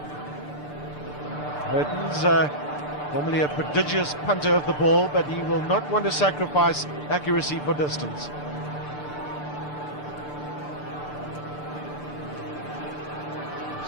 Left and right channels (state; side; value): late; right; 6.8 ms